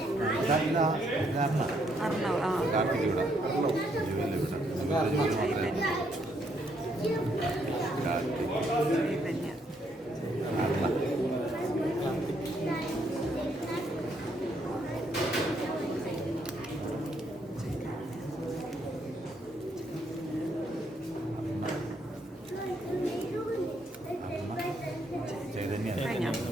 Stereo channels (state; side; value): normal; both; correlation 0.73